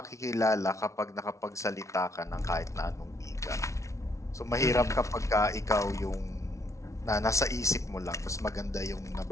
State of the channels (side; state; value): right; late; 0.14 ms